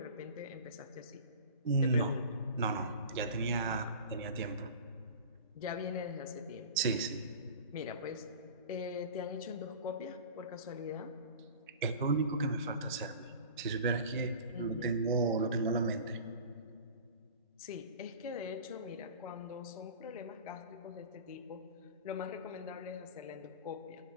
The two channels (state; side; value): inverted; both; correlation -0.38